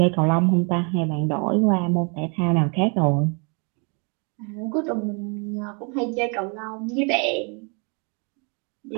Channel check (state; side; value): quieter; left; 34.8 dB